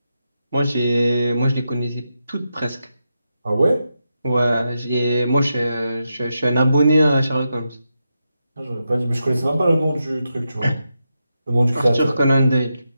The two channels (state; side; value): inverted; both; correlation -0.87